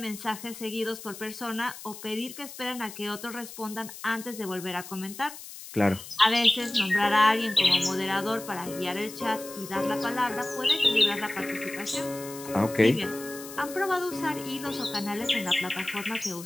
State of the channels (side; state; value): left; noise; hiss, 13 dB below the sound